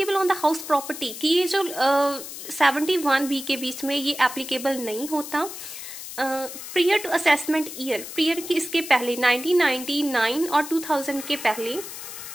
on the house property, कि ये जो 71B के बीच में ये एप्लीकेबल नहीं होता। Prior to assessment year, prior की इसके पहले 1999 और 2000 के पहले।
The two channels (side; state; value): left; noise; hiss, 10 dB below the sound